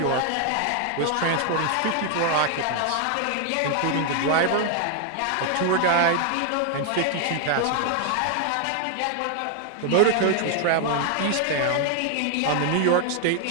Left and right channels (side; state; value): both; different; correlation 0.00